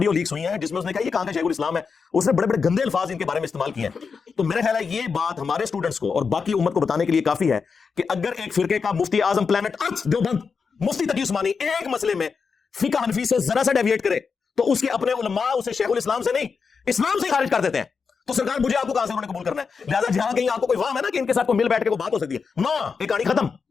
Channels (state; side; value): quieter; right; 5.4 dB